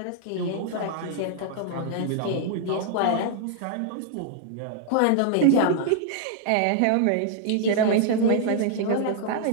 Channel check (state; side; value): different; both; correlation -0.01